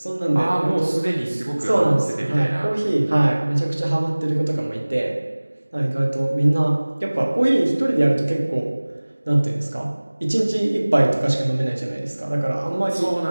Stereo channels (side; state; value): both; inverted; correlation -1.00